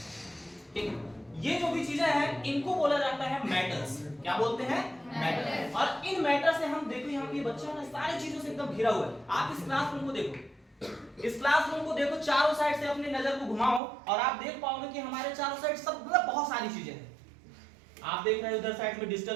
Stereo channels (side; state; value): left; drops out; at 13.8 s